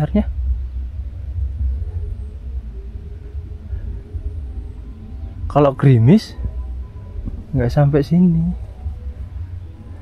Kalau gerimis nggak sampai sini.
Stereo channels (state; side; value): identical; both; correlation 1.00